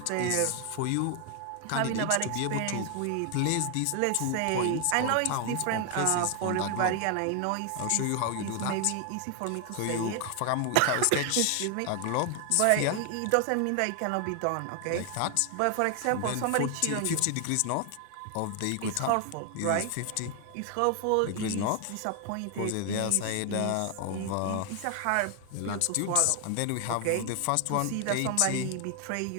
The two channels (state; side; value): different; both; correlation 0.00